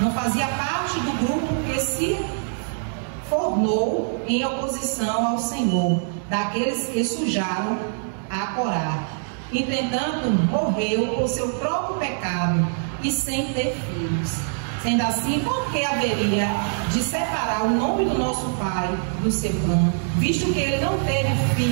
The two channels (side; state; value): left; silent; digital silence